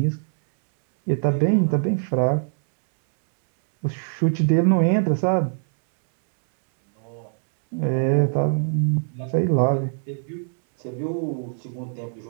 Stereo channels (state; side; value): silent; left; 64 dB below the other